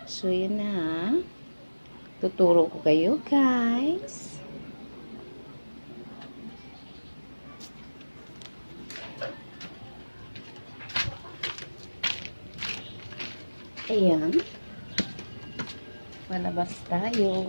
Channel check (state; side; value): inverted; both; correlation -1.00